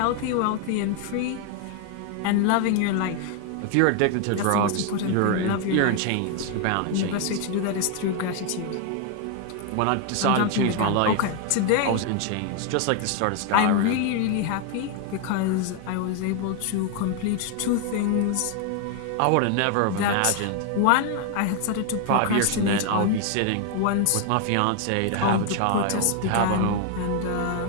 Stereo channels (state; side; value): different; both; correlation 0.00